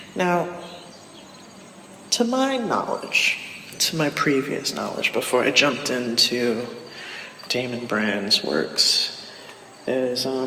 Now, to my knowledge, to my previous knowledge, before I jumped into Damon Brand's works, is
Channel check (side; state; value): both; identical; correlation 1.00